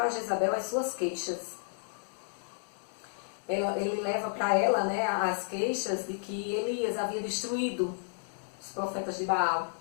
Jezabel as suas queixas. Ele leva para ela, as queixas de que Elias havia destruído os profetas de Baal.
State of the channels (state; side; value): silent; right; digital silence